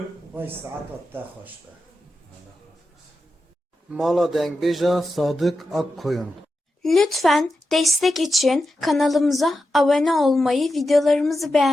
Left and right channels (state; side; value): normal; both; correlation 0.90